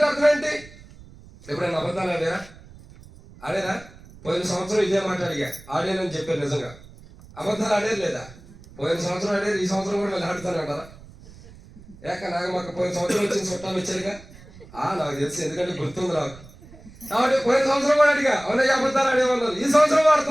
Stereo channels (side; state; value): right; noise; rumble, 21 dB below the sound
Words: అర్థం ఏంటి? ఎప్పుడైనా అబద్ధాలు ఆడేరా? పోయిన సంవత్సరం ఇదే మాట అడిగా, ఆడేనని చెప్పారు. నిజంగా అబద్ధాలు ఆడేది లేదా? పోయిన సంవత్సరం ఆడేది, ఈ సంవత్సరం కూడా మళ్ళీ ఆడుతాను అంటారా? నాగమ్మక్క పోయిన సంవత్సరం వచ్చిన చుట్టాలు వచ్చారుగా. నాకు తెలుసు, ఎందుకంటే గుర్తుంది నాకు. కాబట్టి పోయిన సంవత్సరం కూడా అడిగా, అవునయ్య అబద్ధాలు ఆడేమన్నారు. ఈ సంవత్సరం